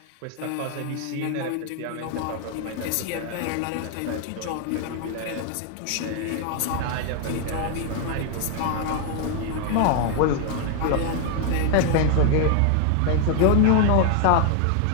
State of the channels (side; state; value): both; different; correlation 0.00